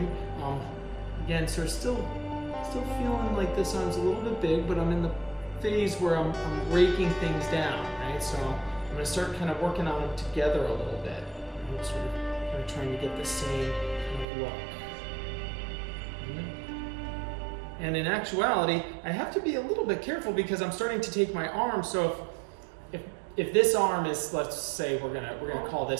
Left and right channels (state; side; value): drops out; left; at 14.2 s